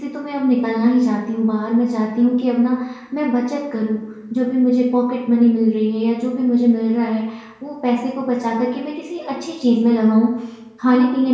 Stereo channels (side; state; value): both; identical; correlation 1.00